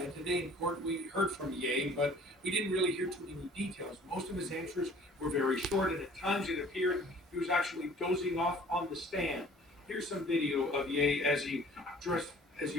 And today in court, we heard from Ye, but we didn't really hear too many details. Most of his answers were very short, and at times it appeared he was actually dozing off on the stand. Here's some video of Ye as he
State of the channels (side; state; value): both; normal; correlation 0.52